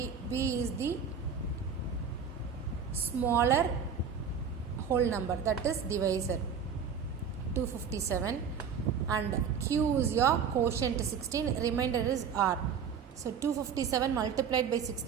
B is the smaller whole number, that is divisor, 257, and Q is your quotient 16, remainder is R. So 257 multiplied by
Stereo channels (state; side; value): quieter; left; 6.7 dB